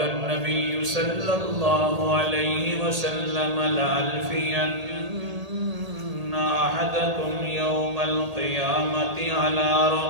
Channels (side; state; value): left; late; 1.8 ms